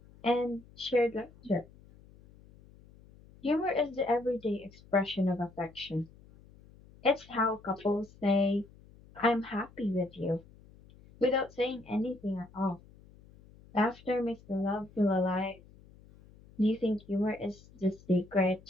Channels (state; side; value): noise; left; hum, 24 dB below the sound